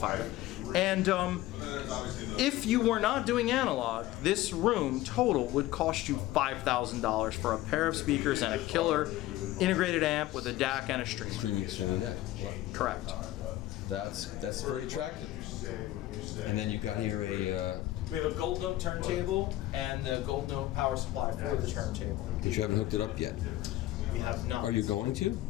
And if you were not doing analog, this room total would cost you $5,000 for a pair of speakers and a killer integrated amp with a DAC and a streamer. Streaming DAC. Wow. Correct. That's very attractive. And then you've got here a. We have a Gold Note turntable and the Gold Note power supply for the turntable. But you haven't hooked it up yet. We have not. Are you going to?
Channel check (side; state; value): right; quieter; 15.7 dB